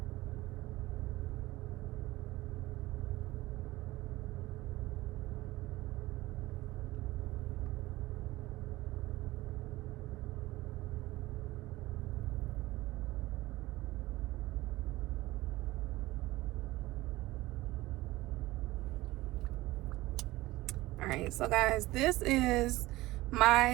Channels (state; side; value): quieter; left; 18.6 dB